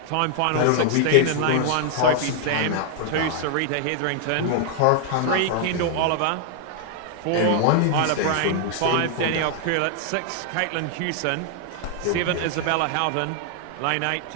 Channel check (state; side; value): different; both; correlation 0.00